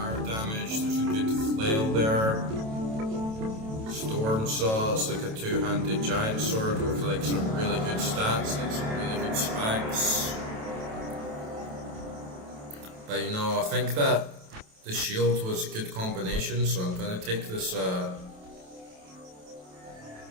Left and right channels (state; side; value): late; left; 27 ms